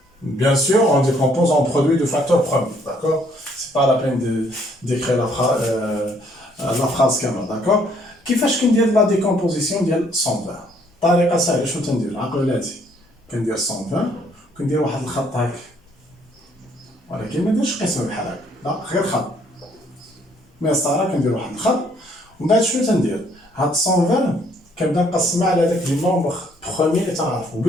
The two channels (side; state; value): both; normal; correlation 0.65